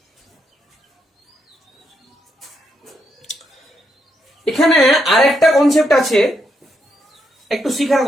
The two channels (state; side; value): normal; both; correlation 0.79